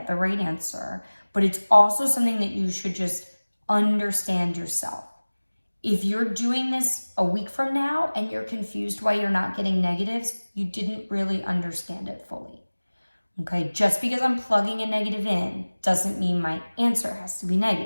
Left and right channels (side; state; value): both; inverted; correlation -1.00